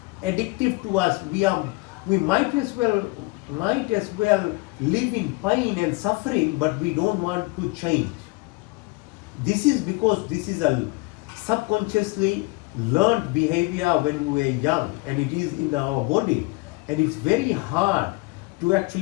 addictive to us. We might as well live in pain and suffering, but we don't want to change. This is because this is a subconsciously learned behavior when we were young, and it is in our body, and it's very hard to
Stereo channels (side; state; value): right; quieter; 24.2 dB